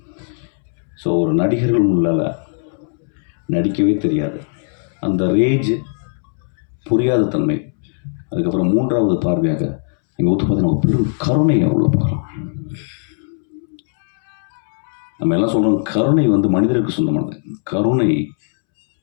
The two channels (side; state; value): right; silent; 67 dB below the other